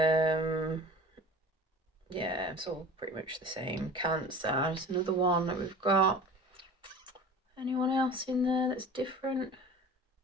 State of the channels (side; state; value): both; normal; correlation 0.39